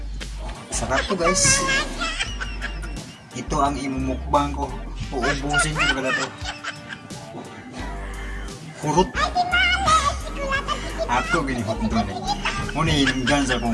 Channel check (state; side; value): identical; both; correlation 1.00